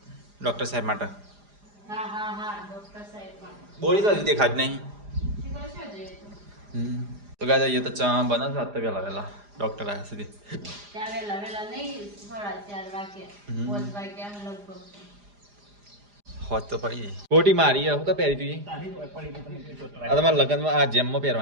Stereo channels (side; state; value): left; late; 4.9 ms